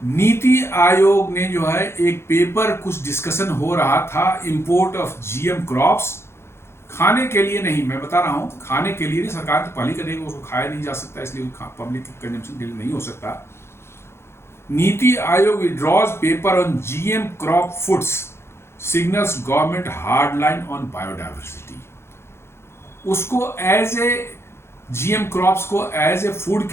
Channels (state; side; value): late; right; 0.12 ms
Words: नीति आयोग ने जो है एक पेपर, कुछ डिस्कशन हो रहा था इंपोर्ट ऑफ जीएम क्रॉप्स, खाने के लिए नहीं, मैं बता रहा हूं खाने के लिए नहीं, सरकार तो पहले करेगी, उसको खाया नहीं जा सकता इसलिए पब्लिक कंजम्पशन के लिए नहीं हो सकता। नीति Aayog withdraws paper on GM crop foods, signals government hard line on biodiversity. उसको एज ए जीएम क्रॉप्स को एज ए फूड